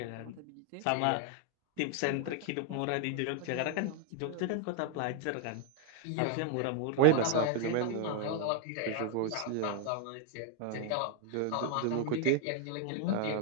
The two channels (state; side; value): different; both; correlation 0.00